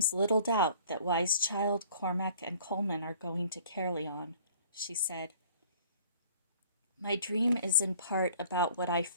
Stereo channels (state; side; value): inverted; both; correlation -0.52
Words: little doubt that Wise Child, Cormac, and Colman are going to Caerleon, she said. My dream is in part about what I